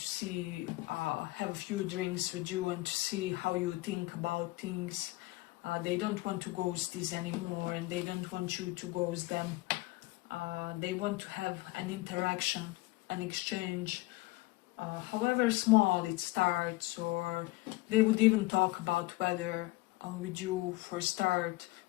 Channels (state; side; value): quieter; right; 20.8 dB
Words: see, have a few drinks with you and to see how you think about things. They don't want to ghost this anymore, and they don't want you to ghost them. They want to have an interaction, an exchange, however small it starts, or they would even talk about weather with you for a start